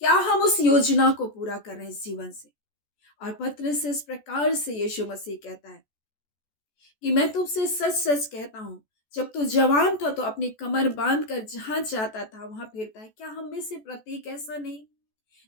क्या हम उस योजना को पूरा कर रहे हैं इस जीवन से? और पत्र से इस प्रकार से यीशु मसीह कहता है कि मैं तुमसे सच सच कहता हूं, जब तू जवान था तो अपनी कमर बांध कर जहां चाहता था वहां फिरता है। क्या हम में से प्रत्येक ऐसा नहीं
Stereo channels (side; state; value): right; late; 14 ms